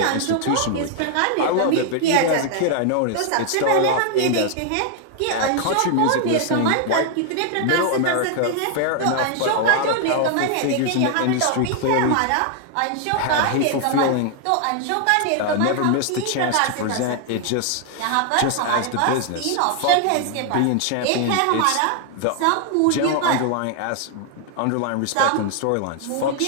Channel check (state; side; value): different; both; correlation 0.00